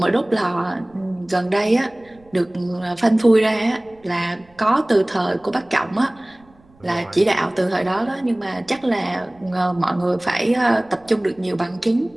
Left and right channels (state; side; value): noise; right; rumble, 30 dB below the sound